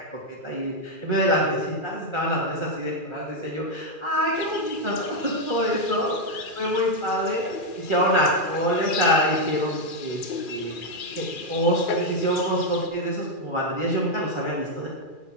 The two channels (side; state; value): right; late; 2.4 ms